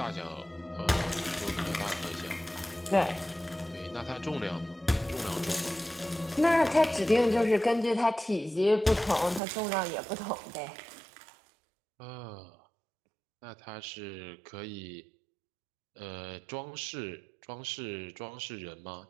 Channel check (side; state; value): left; drops out; at 9.4 s